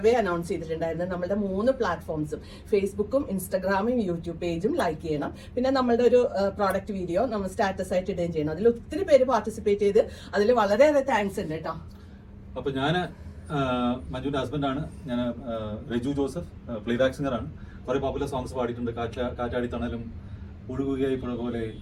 announce ചെയ്തിട്ടുണ്ടായിരുന്നു. നമ്മുടെ 3 പ്ലാറ്റ്ഫോംസും ഫേസ്ബുക്കും ഇൻസ്റ്റാഗ്രാമും യൂട്യൂബ് പേജും ലൈക്ക് ചെയ്യണം. പിന്നെ നമ്മളുടെ ഒരു പ്രോഡക്റ്റ് വീഡിയോ നമ്മൾ സ്റ്റാറ്റസ് ആയിട്ട് ഇടുകയും ചെയ്യണം. അതിൽ ഒത്തിരി പേര് പാർട്ടിസിപ്പേറ്റ് ചെയ്ത് അതിൽ വളരെയേറെ താങ്ക്സ് ഉണ്ട് കേട്ടോ. അപ്പൊ ഞാൻ മഞ്ജുവിന്റെ ഹസ്ബൻഡാണ്. ഞാൻ രജു ജോസഫ്, പ്ലേബാക്ക് സിംഗറാണ്. കുറെ പോപ്പുലർ സോങ്സ് പാടിയിട്ടുണ്ട്. കാറ്റാടി തണലും, ഒഴുകുകയായി പുഴ പോലെ,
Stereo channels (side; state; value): both; identical; correlation 1.00